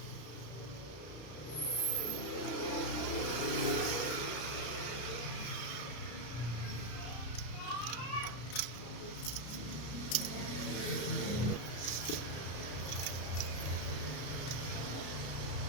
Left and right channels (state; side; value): late; right; 33 ms